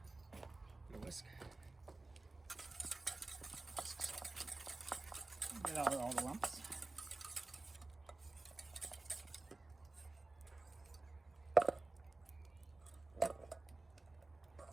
whisk. Get out all the lumps.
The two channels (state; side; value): quieter; left; 3.2 dB